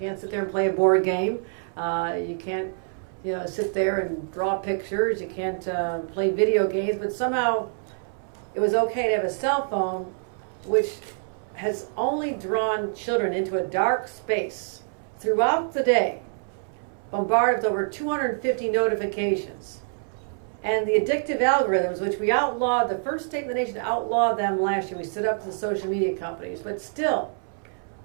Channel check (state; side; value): silent; left; 61 dB below the other